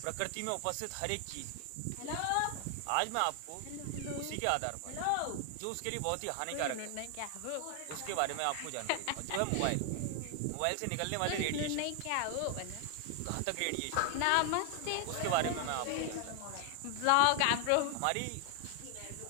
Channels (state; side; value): different; both; correlation 0.00